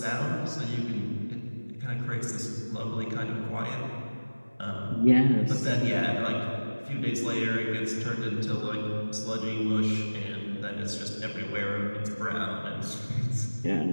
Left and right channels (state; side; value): inverted; both; correlation -1.00